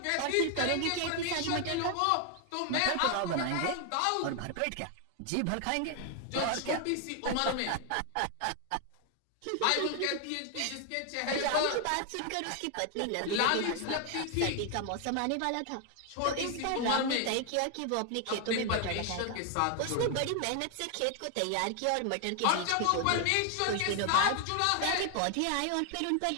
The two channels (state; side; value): different; both; correlation 0.00